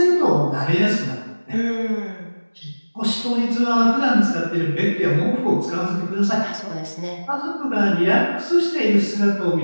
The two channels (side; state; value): both; inverted; correlation -1.00